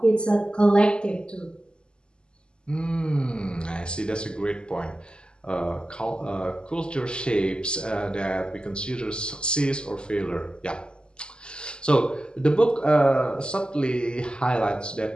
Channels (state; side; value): late; right; 0.049 ms